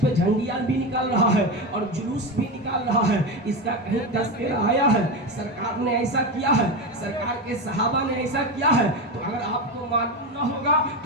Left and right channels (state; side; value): normal; both; correlation 0.18